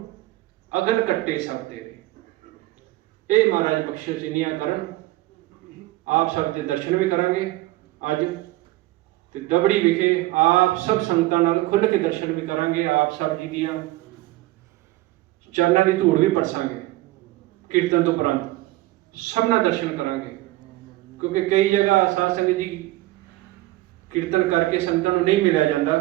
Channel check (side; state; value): left; quieter; 17.8 dB